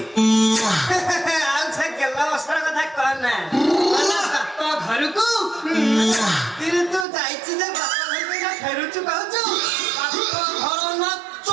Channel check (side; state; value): left; drops out; at 7.1 s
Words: ଆଉ ସେ ଗେଲା ବସ୍ତ୍ର କଥା କହନା ବାପ ଘରକୁ ତୁ ଯାଇଛି ଯେ ବାପ ଘରକୁ ଫେରୁଛୁ କହୁଛୁ। ବାପ ଘର ନା